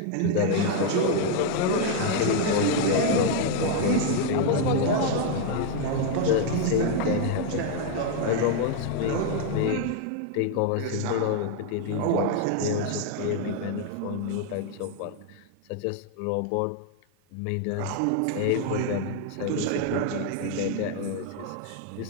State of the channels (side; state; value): both; different; correlation 0.00